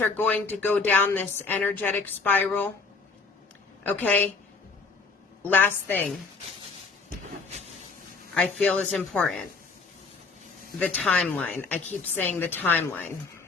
are going to go down this energetic spiral. Okay? Last thing I feel is important. The timeline. I keep saying the timeline.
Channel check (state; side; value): quieter; right; 4.3 dB